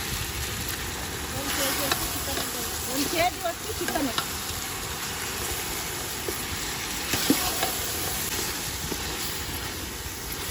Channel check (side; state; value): both; identical; correlation 1.00